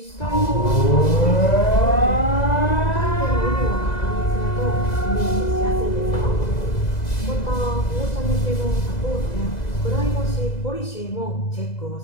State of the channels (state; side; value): late; right; 2.0 ms